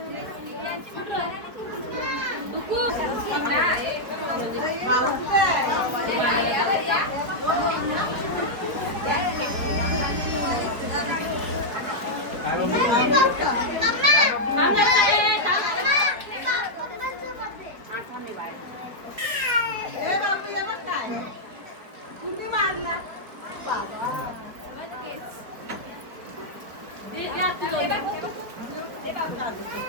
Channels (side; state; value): left; late; 4.6 ms